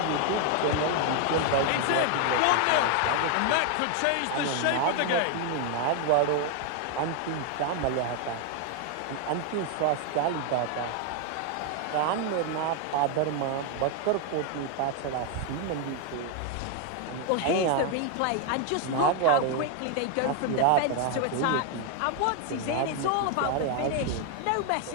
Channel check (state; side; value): different; both; correlation 0.01